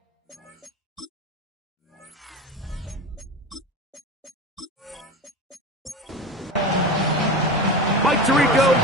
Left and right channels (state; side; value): normal; both; correlation 0.28